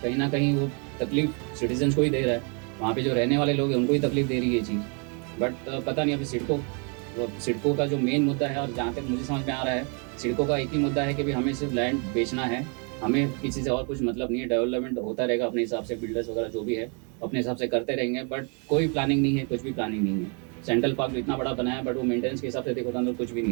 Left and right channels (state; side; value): quieter; left; 36.9 dB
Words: कहीं ना कहीं वो तकलीफ सिटीजन्स को ही दे रहा है, वहाँ पे जो रहने वाले लोग हैं उनको ही तकलीफ दे रही है ये चीज़। बट पता नहीं, अभी सिडको का जो मेन मुद्दा है, और जहाँ तक मुझे समझ में आ रहा है, सिडको का एक ही मुद्दा है कि भी हमें सिर्फ लैंड बेचना है, हमें किसी से और कुछ मतलब नहीं है। डेवलपमेंट होता रहेगा अपने हिसाब से, बिल्डर्स वगैरह जो भी है अपने हिसाब से करते रहेंगे, बट कोई प्लानिंग नहीं है, कुछ भी प्लानिंग नहीं है। सेंट्रल पार्क इतना बड़ा बनाया है, बट वो मेंटेनेंस के हिसाब से देखो तो अंदर कुछ भी नहीं